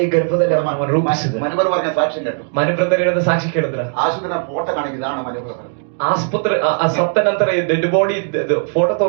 ಗರ್ಭದಲ್ಲಿ ಅವನ ರೂಪಿಸಿದ. മനുവർ പറഞ്ഞ സാക്ഷ്യം കേട്ടു. ಮನುಬ್ರದರ್ ಹೇಳಿದ ಸಾಕ್ಷಿ ಕೇಳಿದ್ರ? ആശുപത്രി ഫോട്ടോ കാണിക്കും. ഇതാണ് മനുവർ പറഞ്ഞത്. ಆಸ್ಪತ್ರೆ ಸತ್ತ ನಂತರ ಡೆಡ್ ಬಾಡಿ ಫೋಟೋ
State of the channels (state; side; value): silent; left; 63 dB below the other